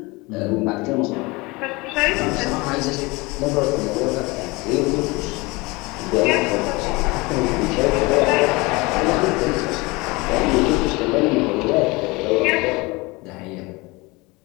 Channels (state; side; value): quieter; right; 24.3 dB